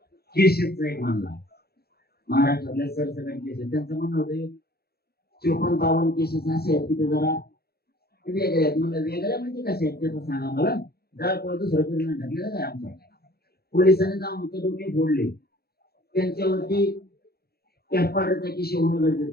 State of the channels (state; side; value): late; right; 0.46 ms